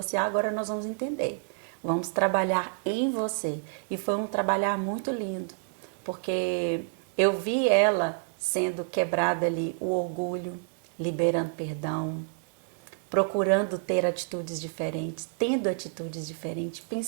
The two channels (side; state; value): left; silent; 59 dB below the other